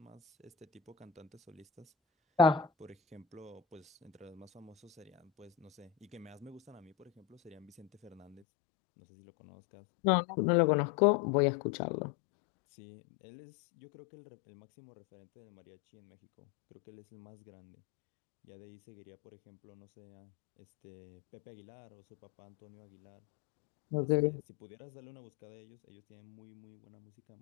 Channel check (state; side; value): drops out; right; at 8.4 s